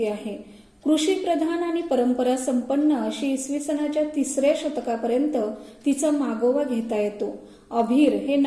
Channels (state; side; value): identical; both; correlation 1.00